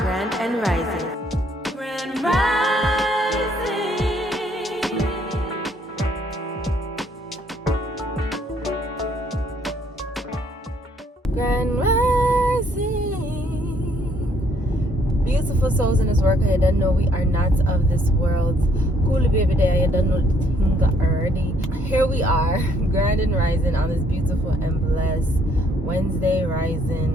and rising. Grand rising. Grand rising. Beautiful souls in this work. I don't know we are not of this world. Cool baby day. I don't know the thing already. Here we are, grand and rising on this beautiful and blessed Wednesday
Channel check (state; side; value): normal; both; correlation 0.66